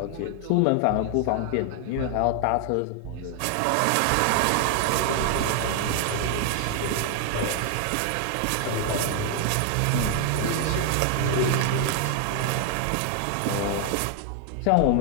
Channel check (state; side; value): different; both; correlation 0.00